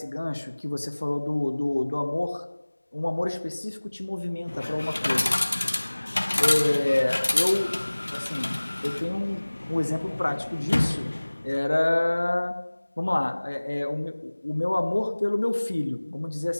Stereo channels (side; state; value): both; inverted; correlation -1.00